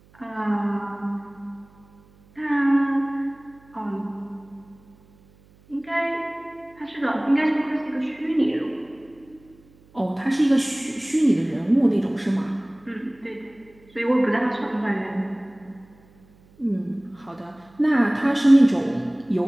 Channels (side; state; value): right; noise; hum, 29 dB below the sound